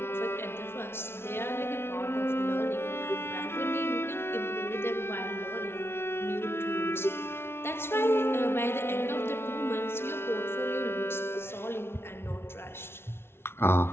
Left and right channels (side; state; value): right; late; 0.12 ms